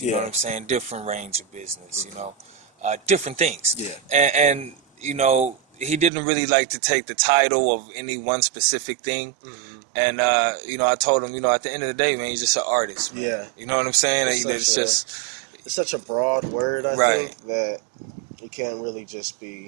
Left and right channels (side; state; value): left; drops out; at 6.1 s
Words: You know Yeah. what I'm saying? Different range of business. Different things. Yeah. And he didn't really like to take the title of any one specific thing. Mm-hmm. And I told him, at the end of the day, man, he's just an artist. Man. Yeah. You know what I'm saying? It's such a broad word, I Right. think, that you can't really just